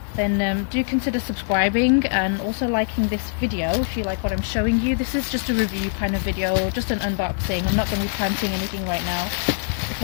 then do consider subscribing and also liking this video if you like what I'm showing you. This is just a review kind of video, just an unboxing. I'm not going to be planting anything right now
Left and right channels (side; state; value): right; silent; digital silence